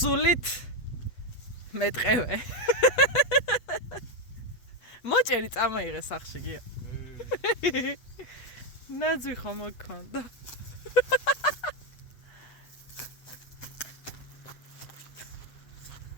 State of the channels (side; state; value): right; late; 8.2 ms